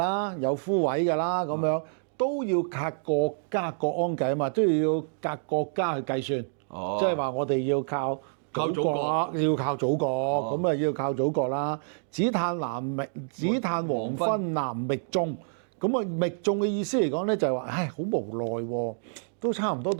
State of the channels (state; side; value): silent; left; digital silence